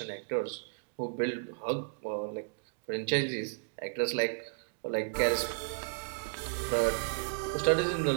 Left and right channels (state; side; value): silent; left; digital silence